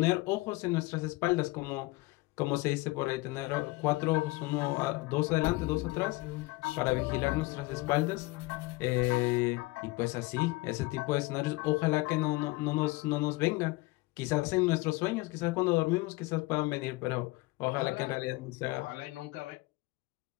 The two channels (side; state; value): right; quieter; 21.9 dB